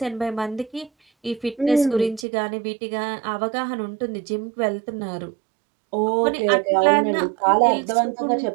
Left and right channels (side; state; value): left; drops out; at 2.2 s